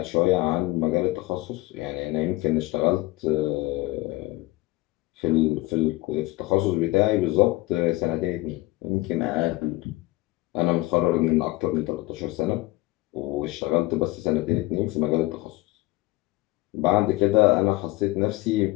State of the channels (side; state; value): right; quieter; 19.8 dB